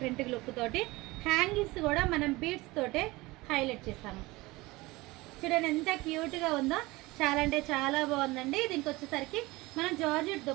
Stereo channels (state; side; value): quieter; left; 21.3 dB